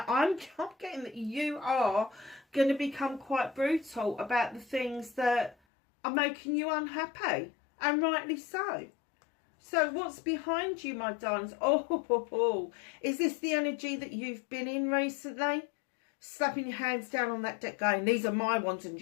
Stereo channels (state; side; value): drops out; right; at 5.6 s